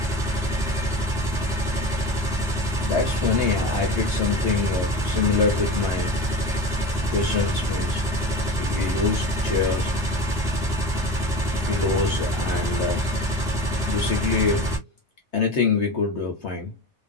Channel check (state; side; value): normal; both; correlation 0.29